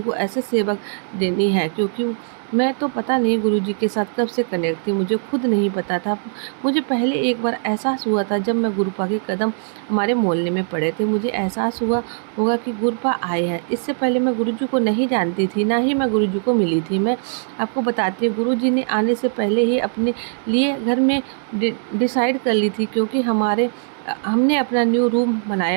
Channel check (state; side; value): silent; left; 65 dB below the other